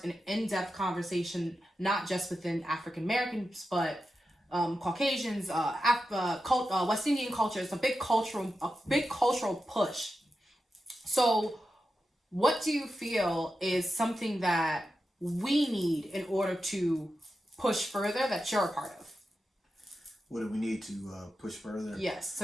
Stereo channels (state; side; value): normal; both; correlation 0.90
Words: an in-depth conversation, not just within African Americans, but Caucasians, West Indian culture. It's a big cultural push. So what do you feel is something that we need in order to push further, that you're a part of? What do we need to push further? Yes, to